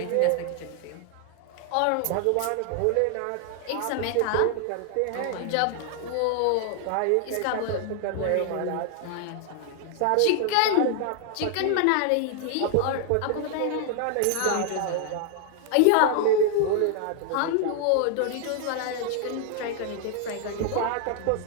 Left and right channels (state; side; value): different; both; correlation 0.00